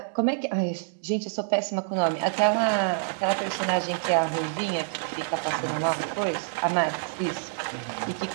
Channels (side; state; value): left; silent; digital silence